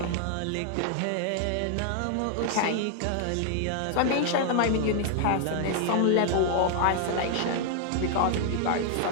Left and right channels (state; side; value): different; both; correlation 0.00